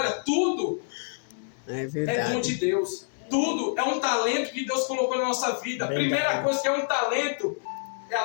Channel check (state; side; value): silent; right; 60 dB below the other